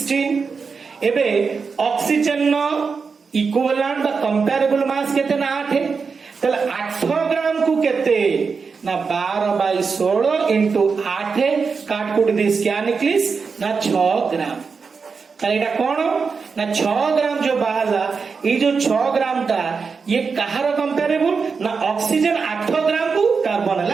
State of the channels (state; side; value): quieter; left; 5.2 dB